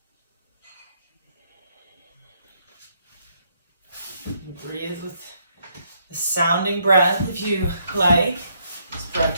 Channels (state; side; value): inverted; both; correlation -0.73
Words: Breathe with the sounding breath if you like. This